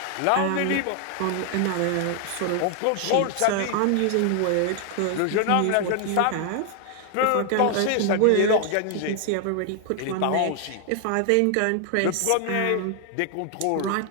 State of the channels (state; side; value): different; both; correlation 0.00